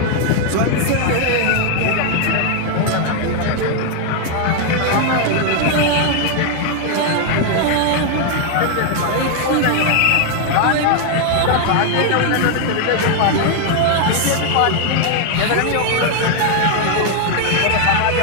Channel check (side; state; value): both; different; correlation 0.00